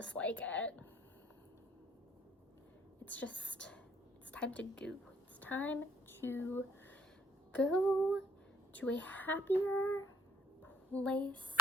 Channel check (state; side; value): normal; both; correlation 0.59